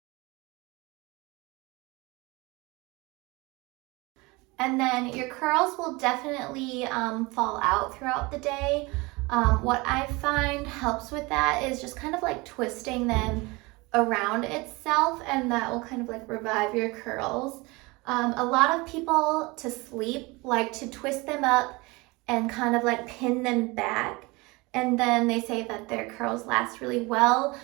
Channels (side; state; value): left; quieter; 24.4 dB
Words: And then your curls will definitely fall out throughout the day. What I find helps with that is just kind of like twisting them around itself, and that will kind of like revive your curls. A lot of people to sleep like to twist them up and kind of like pin them back, and then they say that their curls last really well.